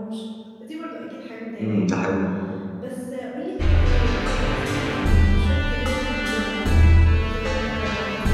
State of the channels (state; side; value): identical; both; correlation 1.00